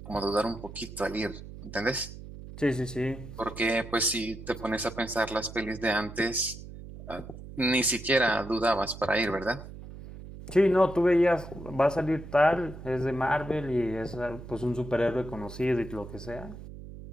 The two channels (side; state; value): right; noise; hum, 13 dB below the sound